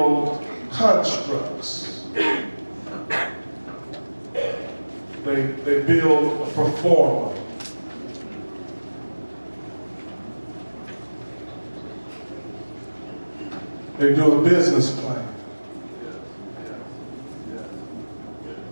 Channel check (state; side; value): inverted; both; correlation -1.00